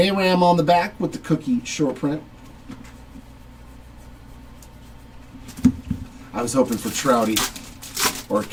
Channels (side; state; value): both; identical; correlation 1.00